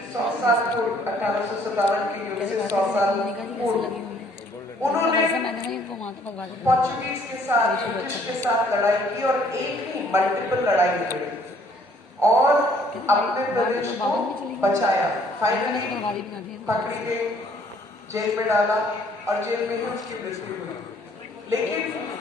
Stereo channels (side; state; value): both; normal; correlation 0.61